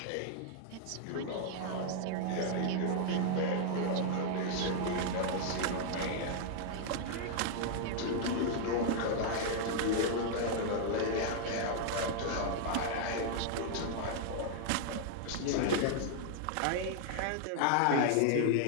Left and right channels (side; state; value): both; different; correlation 0.00